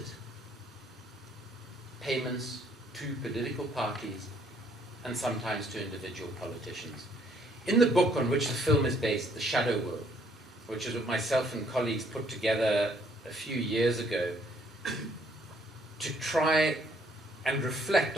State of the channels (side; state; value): both; normal; correlation 0.65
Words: payments to political parties and sometimes to individual politicians. In the book on which the film is based, The Shadow World, which is what myself and colleagues put together a few years ago to try and reflect